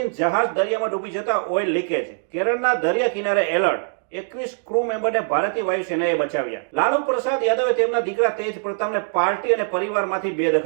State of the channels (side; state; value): left; silent; digital silence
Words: જહાજ દરિયામાં ડૂબી જતા ઓઇલ લીકેજ. કેરળના દરિયા કિનારે એલર્ટ. 21 ક્રૂ મેમ્બરને ભારતીય વાયુસેનાએ બચાવ્યા. લાલુ પ્રસાદ યાદવે તેમના દીકરા તેજ પ્રતાપને પાર્ટી અને પરિવારમાંથી